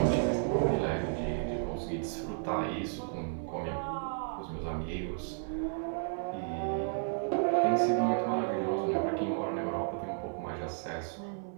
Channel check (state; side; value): silent; left; digital silence